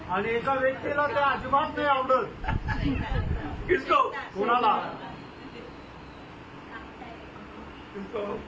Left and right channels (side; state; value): both; identical; correlation 1.00